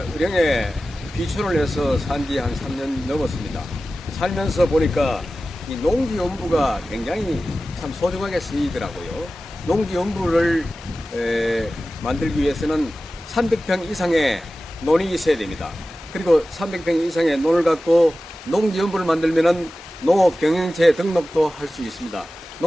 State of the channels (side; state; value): both; normal; correlation 0.95